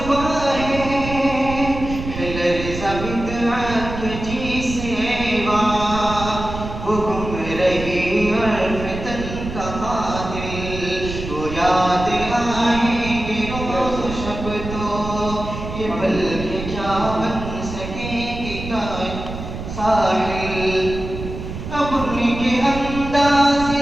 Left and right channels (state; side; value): noise; right; rumble, 8 dB below the sound